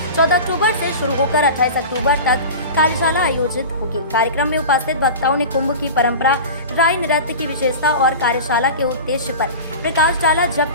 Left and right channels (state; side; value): inverted; both; correlation -0.32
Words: 14 अक्टूबर से शुरू होकर 28 अक्टूबर तक कार्यशाला आयोजित होगी। कार्यक्रम में उपस्थित वक्ताओं ने कुंभ की परंपरा, राई नृत्य की विशेषता और कार्यशाला के उद्देश्य पर प्रकाश डाला,